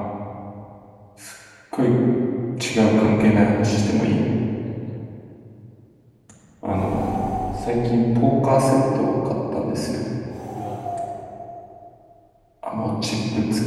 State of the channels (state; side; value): identical; both; correlation 1.00